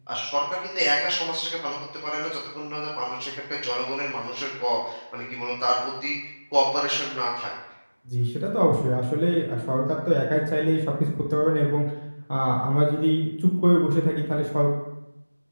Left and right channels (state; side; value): inverted; both; correlation -1.00